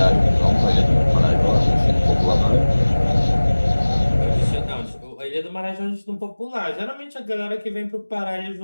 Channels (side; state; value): both; inverted; correlation -1.00